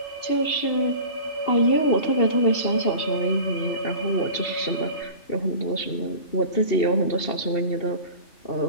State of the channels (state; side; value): late; right; 2.7 ms